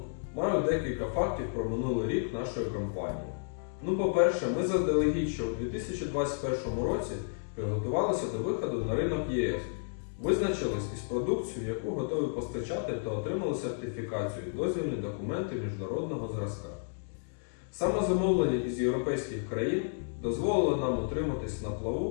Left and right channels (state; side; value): silent; right; digital silence